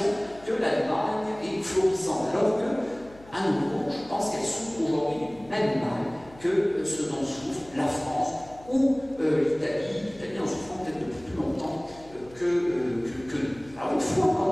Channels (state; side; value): noise; left; hum, 23 dB below the sound